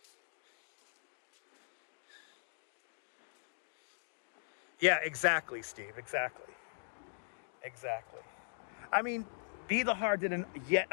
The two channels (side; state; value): right; silent; digital silence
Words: Yeah, exactly, Steve. Exactly. Exactly. I mean, Be the Heart did yet